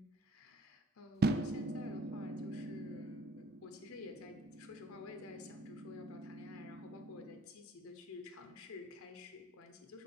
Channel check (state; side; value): normal; both; correlation 0.55